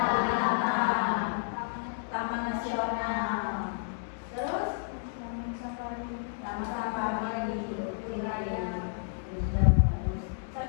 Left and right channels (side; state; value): right; silent; digital silence